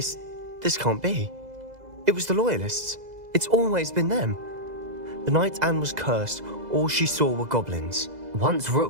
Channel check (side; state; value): left; late; 2.0 ms